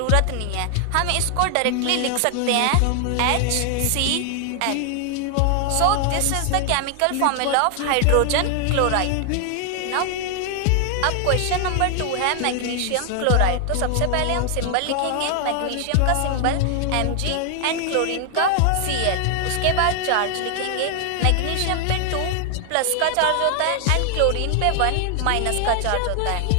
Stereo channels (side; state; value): both; different; correlation 0.00